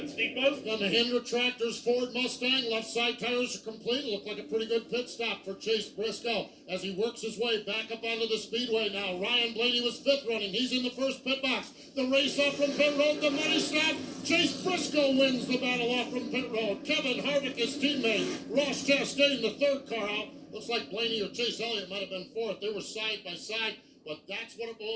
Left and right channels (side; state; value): both; identical; correlation 1.00